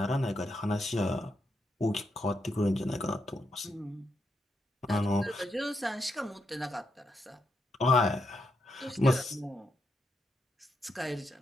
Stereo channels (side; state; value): both; normal; correlation 0.81